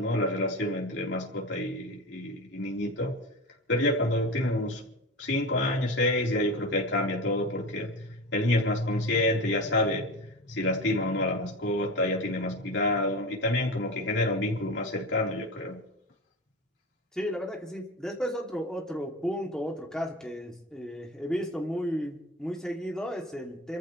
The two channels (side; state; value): both; normal; correlation 0.26